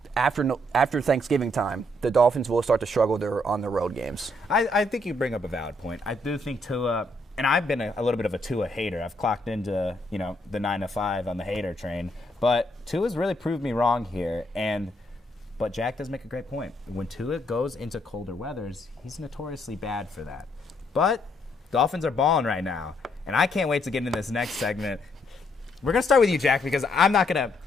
after Thanksgiving time, the Dolphins will start to struggle on their road games. I think you bring up a valid point. I do think Tua, and I've been a little bit of a Tua hater. I've clocked into the 9 to 5 on the hater train, but Tua's really proved me wrong here. But Jack does make a great point. When Tua goes into colder weathers, he's notoriously bad for that. But Dolphins are balling right now, and I can't wait to get into this next segment. We're gonna start with you, Jack, because I'm not gonna,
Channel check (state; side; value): normal; both; correlation 0.73